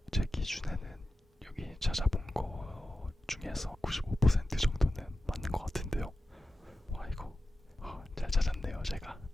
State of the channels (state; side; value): normal; both; correlation 0.93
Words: 제 기준에는 여기 찾아본 거 중에서 95% 정도는 맞는 것 같은데요. 와 이거 잘 찾았네요 제가.